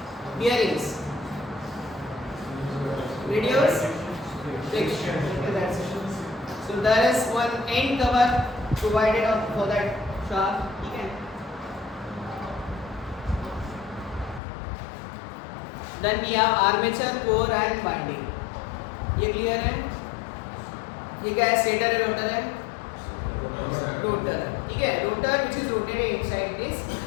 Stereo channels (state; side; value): drops out; right; at 14.4 s